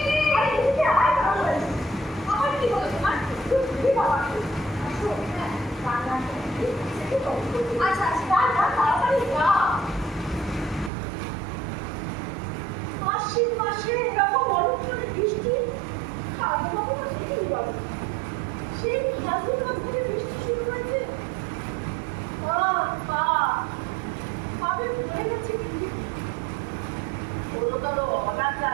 আরে এদিকে আয় বাবা। আমার কি হলো তোমার? তুমি বাবা। আসো, হ্যাঁ, রান্না করছি। আচ্ছা আচ্ছা, যা তাড়াতাড়ি যা। আশ্বিন মাসে এরকম অনেকখানি বৃষ্টি ফাল্গুন মাসে দেখি বলো। সেই ফাল্গুন মাস থেকে বৃষ্টি শুরু হয়েছে। ভাবে ভুলে গেছি কি গুরুতর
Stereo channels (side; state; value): left; drops out; at 10.9 s